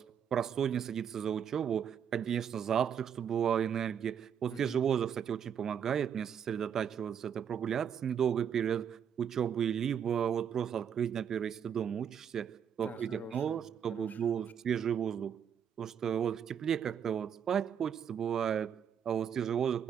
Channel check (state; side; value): quieter; left; 8.2 dB